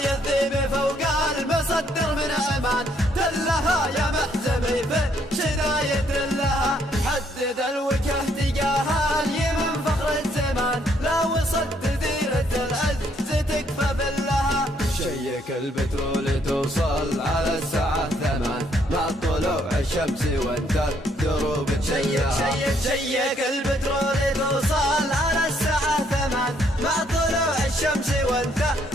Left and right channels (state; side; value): normal; both; correlation 0.69